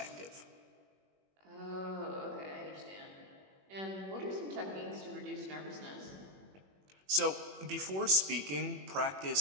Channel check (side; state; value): left; late; 21 ms